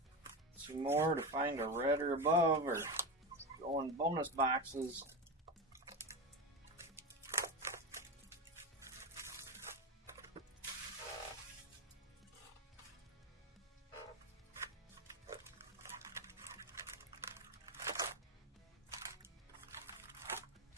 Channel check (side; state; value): both; normal; correlation 0.19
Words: Two more to find a red or above, or go in bonus boxes.